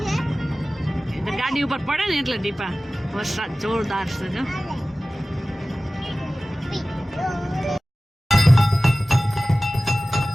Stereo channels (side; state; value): both; normal; correlation 0.97